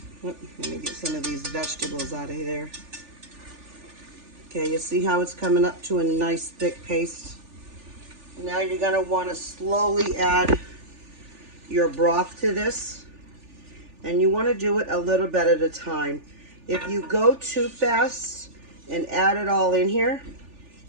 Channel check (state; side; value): late; left; 3.4 ms